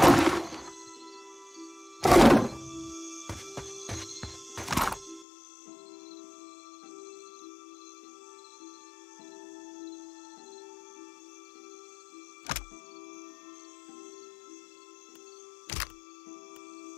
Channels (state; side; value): drops out; right; at 5.2 s